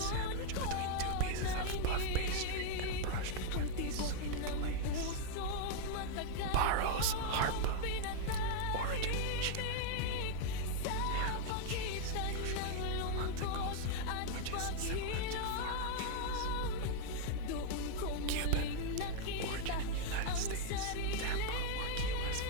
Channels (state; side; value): different; both; correlation 0.00